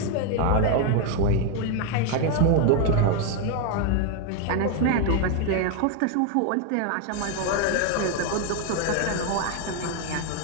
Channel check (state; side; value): different; both; correlation 0.01